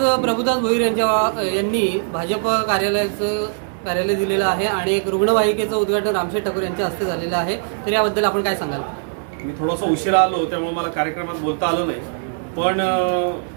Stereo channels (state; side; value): silent; left; digital silence